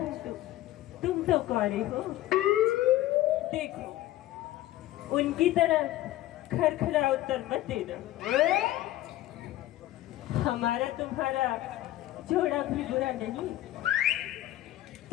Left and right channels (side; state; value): right; quieter; 15.1 dB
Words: तुम तो कौरे हो। देखो, उनकी तरह खरखरा उत्तर मत देना। हमारा तुम्हारा जोड़ा भी बुरा नहीं।